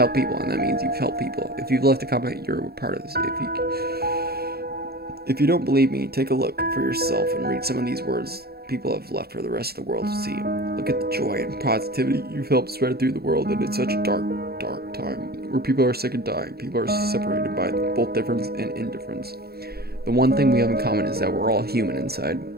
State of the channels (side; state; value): left; late; 0.46 ms